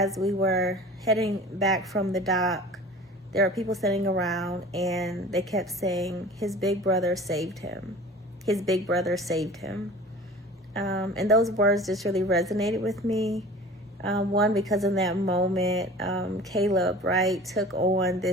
we were heading back from the dock, there were people sitting around and they kept saying, his big brother saved him. His big brother saved him. And those words just really resonated with me. One, because in that moment, Caleb, right, took on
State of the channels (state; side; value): normal; both; correlation 0.41